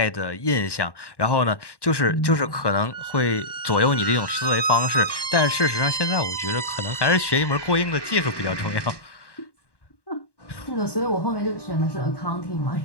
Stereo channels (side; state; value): right; late; 1.1 ms